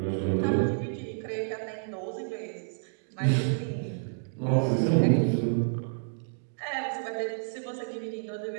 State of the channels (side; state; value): left; silent; digital silence